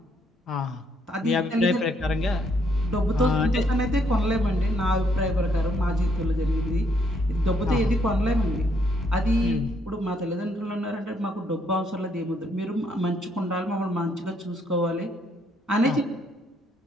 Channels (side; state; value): both; normal; correlation 0.71